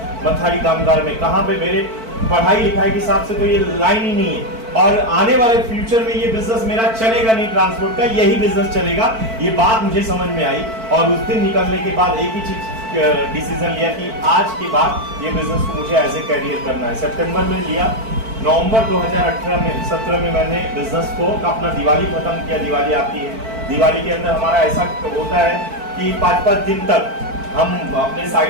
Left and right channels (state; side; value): late; left; 4.5 ms